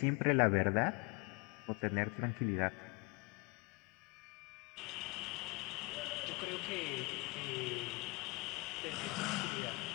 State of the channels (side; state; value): right; quieter; 27.0 dB